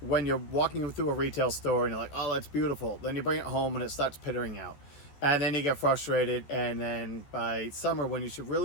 you're walking through a retail store and you're like, oh, that's beautiful. Then you bring it home and it starts pittering out. And then you get frustrated. And then by summer, when you should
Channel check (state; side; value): late; right; 14 ms